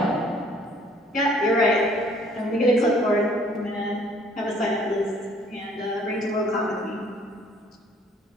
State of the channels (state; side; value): normal; both; correlation 0.59